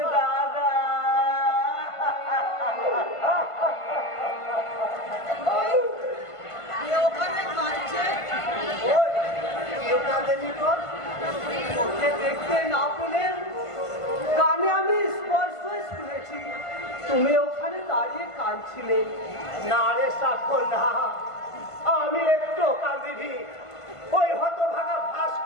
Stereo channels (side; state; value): right; late; 1.5 ms